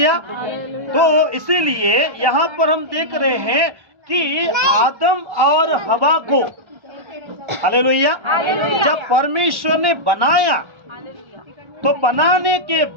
तो इसीलिए यहाँ पर हम देख रहे हैं कि आदम और हवा को, हालेलुया, जब परमेश्वर ने बनाया तो बनाने के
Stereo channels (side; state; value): left; late; 1.3 ms